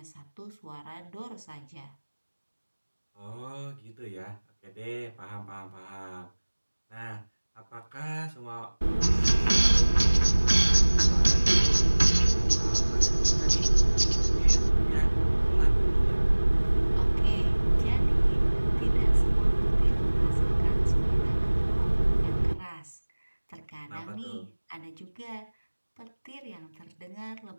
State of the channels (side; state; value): both; inverted; correlation -1.00